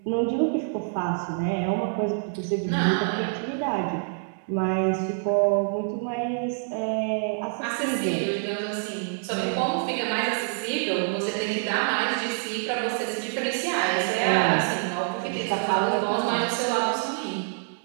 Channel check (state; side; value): silent; left; digital silence